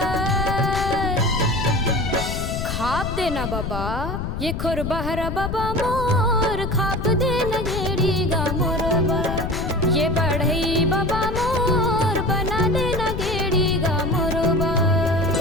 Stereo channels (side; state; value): left; noise; rumble, 4 dB below the sound